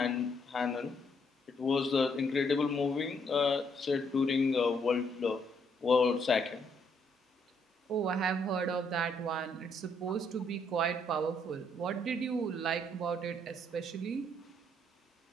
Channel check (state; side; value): normal; both; correlation 0.71